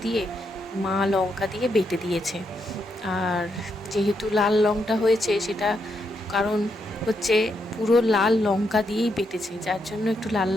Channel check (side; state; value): both; normal; correlation 0.80